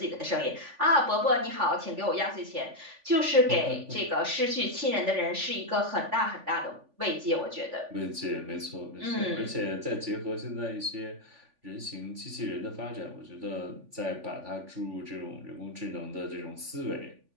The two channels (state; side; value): late; left; 3.5 ms